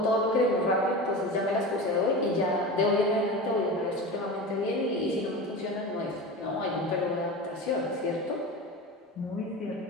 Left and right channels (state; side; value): normal; both; correlation 0.28